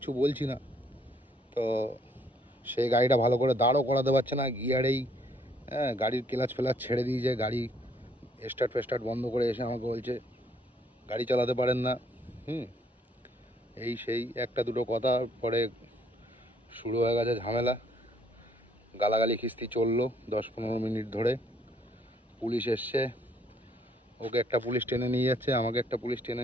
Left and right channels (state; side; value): normal; both; correlation 0.66